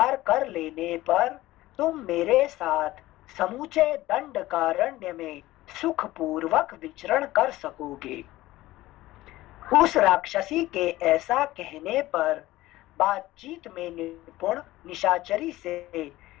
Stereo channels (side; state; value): right; quieter; 17.1 dB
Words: कर लेने पर तुम मेरे साथ समूचे दंडकारण्य में सुखपूर्वक विचरण कर सकोगे। उस राक्षसी के ऐसा कहने पर बातचीत में निपुण निशाचरी से